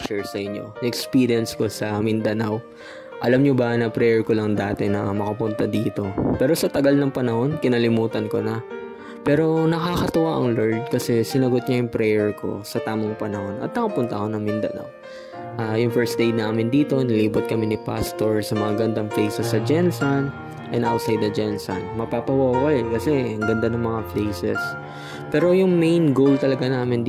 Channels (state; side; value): identical; both; correlation 1.00